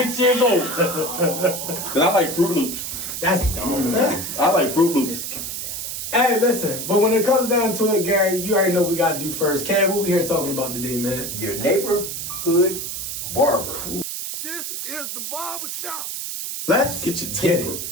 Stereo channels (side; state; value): right; noise; hiss, 5 dB below the sound